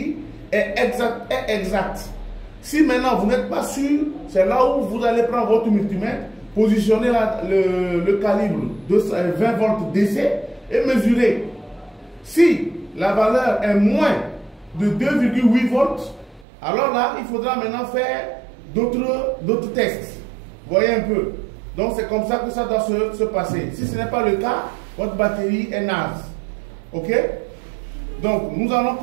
est exacte. Si maintenant vous n'êtes pas sûr, c'est là où vous allez prendre votre multimètre, positionner le calibre de 20 volts DC et mesurer. Si la valeur est moins de 2,8 volts, alors là, il faudra maintenant faire d'autres tests. Voyez un peu. Donc, c'est comme ça que ça doit se passer. Si ce n'est pas le cas, votre batterie est naze. OK? Donc, nous allons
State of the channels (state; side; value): drops out; left; at 16.4 s